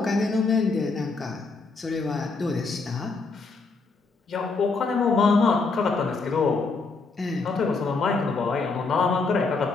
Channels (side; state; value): right; quieter; 4.1 dB